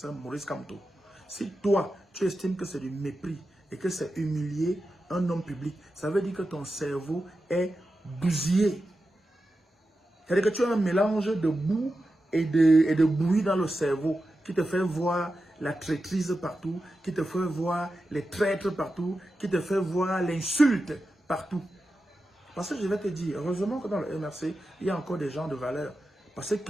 Maurice Kamto, si toi, tu estimes que c'est du mépris et que c'est humilier un homme public, ça veut dire que ton cerveau est bousillé. C'est-à-dire que tu as un mélange de boue et de bouillie dans le cerveau qui te fait voir la traîtrise partout, qui te fait voir les traîtres partout, qui te fait voir l'insulte partout. Parce que je vais te dire, heureusement que dans le MRC, il y a encore des gens de valeur. Parce que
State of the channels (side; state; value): both; normal; correlation 0.91